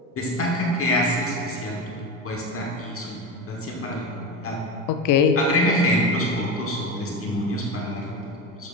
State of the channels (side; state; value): both; normal; correlation 0.21